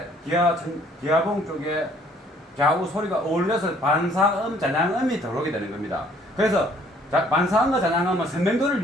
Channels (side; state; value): both; normal; correlation 0.60